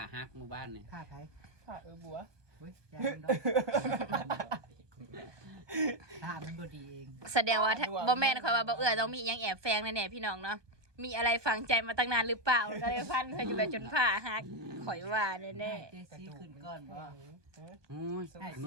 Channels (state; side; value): late; left; 1.2 ms